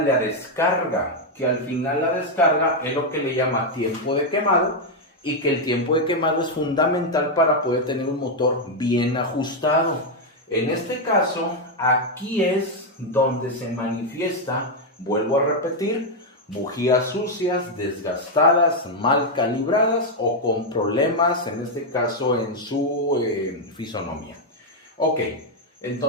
la descarga, que al final la descarga es lo que le llama tiempo de quemado, y que el tiempo de quemado es fundamental para poder tener un motor bien ajustado. En este caso, aquí es donde se manifiesta, vuelvo a repetir, bujías sucias, desgastadas, mal calibradas o con problemas, en este caso en su fisonomía. Ok,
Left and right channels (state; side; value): normal; both; correlation 0.02